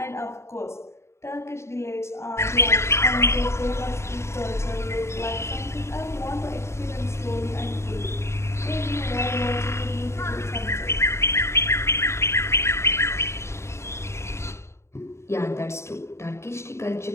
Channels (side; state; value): right; late; 0.13 ms